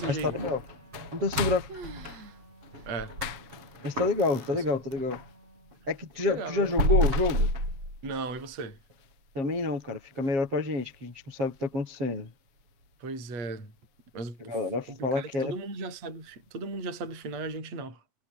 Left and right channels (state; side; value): late; left; 7.3 ms